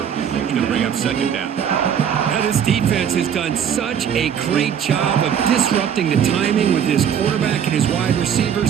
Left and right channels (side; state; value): left; quieter; 8.4 dB